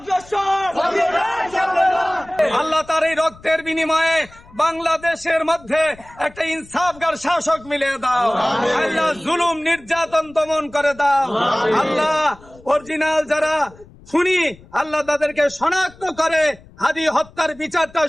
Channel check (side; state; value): left; noise; rumble, 24 dB below the sound